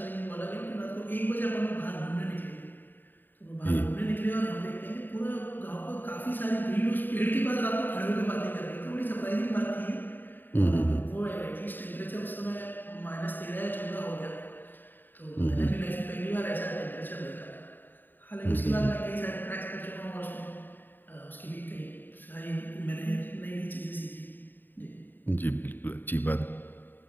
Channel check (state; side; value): late; right; 0.091 ms